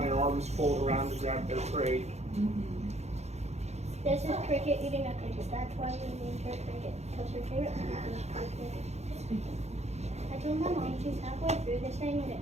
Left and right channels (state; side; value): late; left; 0.32 ms